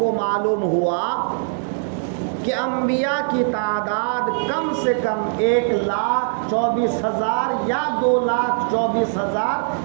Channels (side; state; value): left; silent; digital silence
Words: معلوم ہوا کہ انبیاء کی تعداد کم سے کم 1,24,000 یا 2,24,000